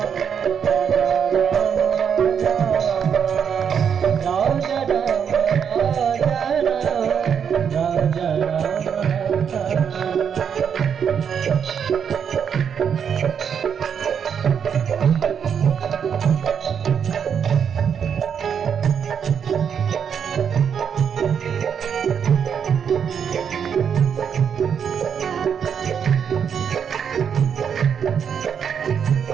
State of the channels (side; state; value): left; quieter; 7.5 dB